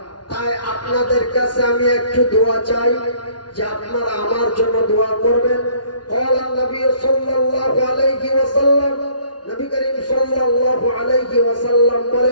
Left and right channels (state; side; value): late; right; 0.70 ms